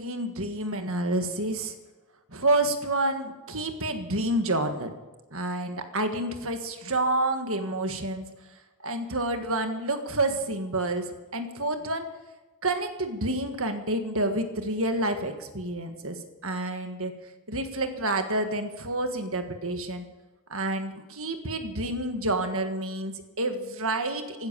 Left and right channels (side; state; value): both; normal; correlation -0.16